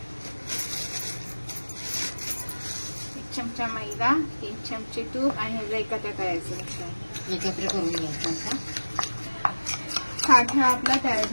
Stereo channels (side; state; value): both; inverted; correlation -1.00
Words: 1 चमचा मैदा, 3 चमचे तूप आणि ह्याला एकत्र करायचं. एकत्र करून घ्यायचं. साठा आपला तयार